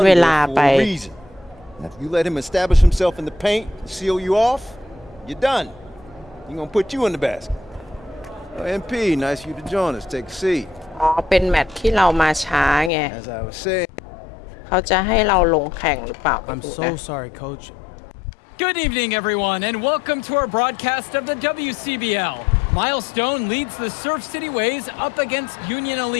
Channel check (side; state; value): right; drops out; at 12.9 s